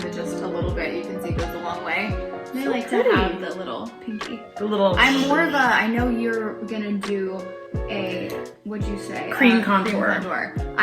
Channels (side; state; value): both; identical; correlation 1.00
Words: it just a little bit, you can see, goes a long way. And I like to pretty. have the little pinky. The little. I'm more of a, I know you're gonna do a, what'd you say? Cream contour. contour.